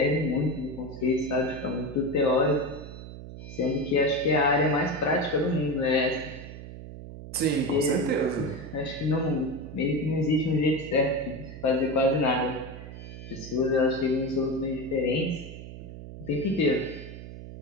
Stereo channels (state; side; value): noise; right; hum, 12 dB below the sound